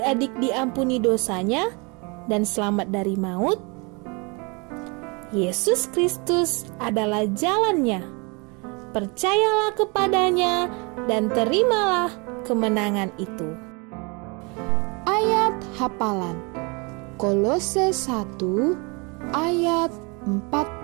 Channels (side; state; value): left; quieter; 30.1 dB